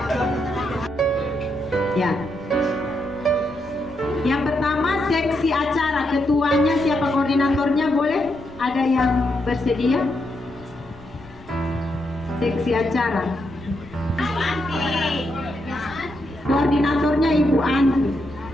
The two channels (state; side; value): noise; left; rumble, 23 dB below the sound